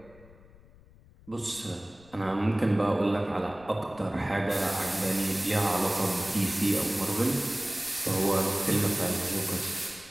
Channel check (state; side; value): noise; left; rumble, 24 dB below the sound